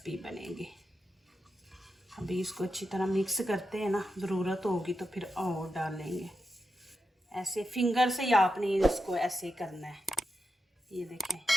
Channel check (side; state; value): both; normal; correlation 0.88